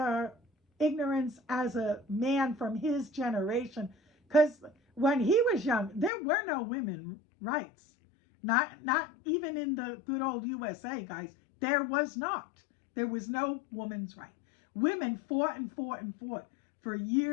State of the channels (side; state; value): right; drops out; at 6.1 s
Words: ignorance as a man from his generation. Because when he was young, there were no women rights. Not even in the good old USA, guys. There was not. There was no woman's right. Women fought and fought and fought for